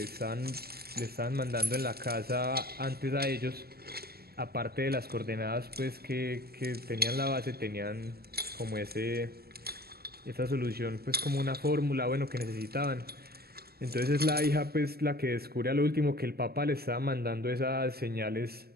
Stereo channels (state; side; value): late; left; 0.45 ms